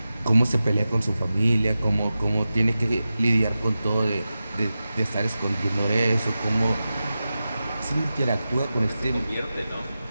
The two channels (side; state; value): both; inverted; correlation -0.93